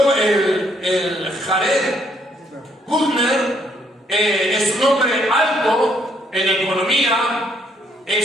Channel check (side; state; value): both; normal; correlation 0.69